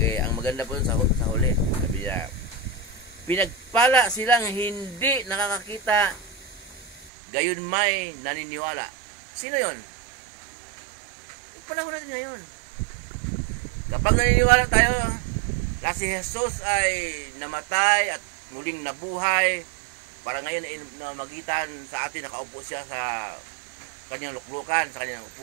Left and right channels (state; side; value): drops out; left; at 7.1 s